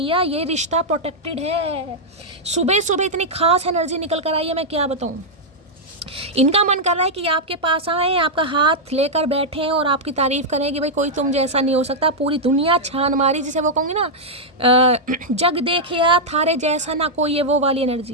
ये रिश्ता प्रोटेक्टेड है। सुबह सुबह इतनी खास एनर्जी निकल कर आई है, मैं क्या बताऊँ। इनका मन कर रहा है कि आपके पास आए, आपका हाथ लेकर बैठें और आपकी तारीफ करें कि भाई कोई तुम जैसा नहीं हो सकता। पूरी दुनिया छान मारी, जिसे वो कहूँगी ना, जग देखिया थारे जैसा ना कोई, ये वो वाली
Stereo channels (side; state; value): both; normal; correlation -0.05